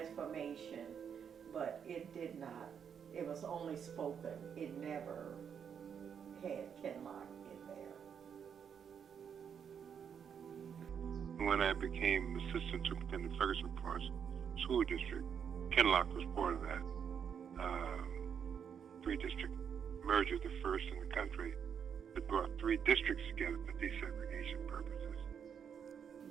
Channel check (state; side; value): quieter; left; 7.6 dB